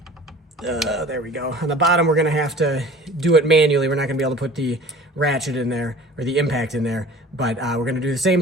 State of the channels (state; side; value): normal; both; correlation 0.44